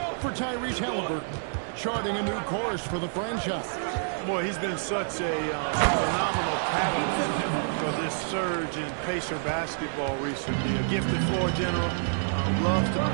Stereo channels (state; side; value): silent; left; digital silence